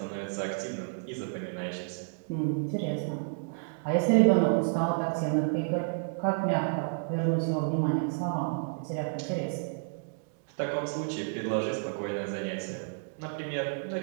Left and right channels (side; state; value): left; silent; digital silence